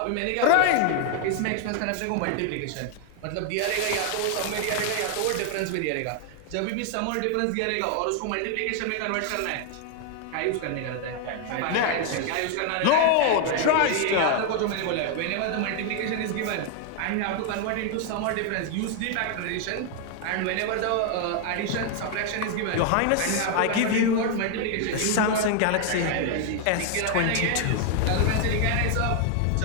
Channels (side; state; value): both; different; correlation 0.00